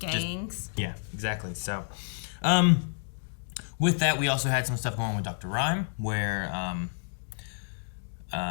Yeah, exactly. So, with that, we also had some stuff going on with Dr. Rhyme, where,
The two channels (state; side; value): silent; right; digital silence